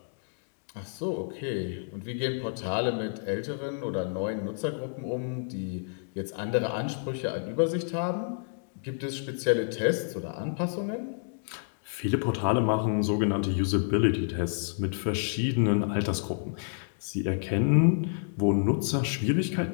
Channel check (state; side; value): silent; right; digital silence